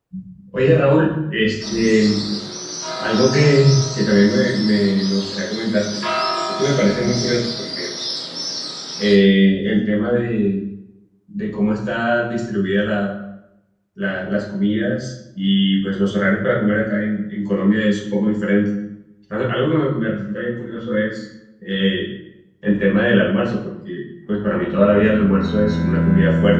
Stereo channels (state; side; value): identical; both; correlation 1.00